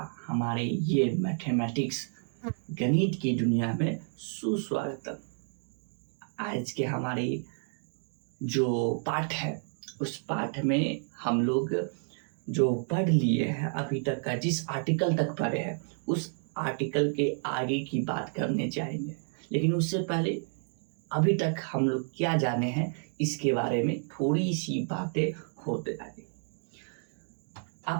हमारे ये मैथमेटिक्स गणित की दुनिया में सुस्वागतम। आज के हमारे जो पाठ है उस पाठ में हम लोग जो पढ़ लिए हैं अभी तक का, जिस आर्टिकल तक पढ़े हैं उस आर्टिकल के आगे की बात करने जाएंगे। लेकिन उससे पहले अभी तक हम लोग क्या जाने हैं इसके बारे में थोड़ी सी बातें होते जाएंगे।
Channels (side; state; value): left; silent; 57 dB below the other